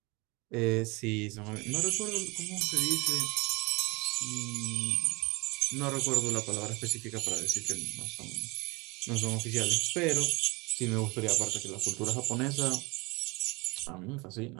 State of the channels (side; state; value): left; quieter; 26.1 dB